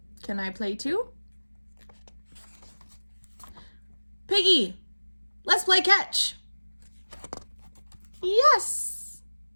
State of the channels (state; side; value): inverted; both; correlation -1.00